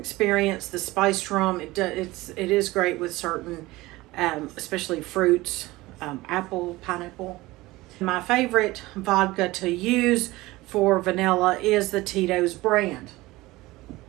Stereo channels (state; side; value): quieter; left; 19.6 dB